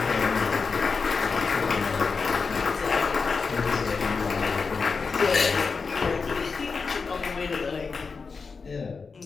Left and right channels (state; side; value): quieter; right; 4.9 dB